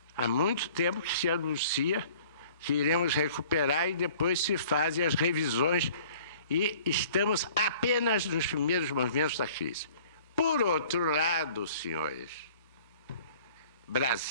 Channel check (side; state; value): both; inverted; correlation -0.51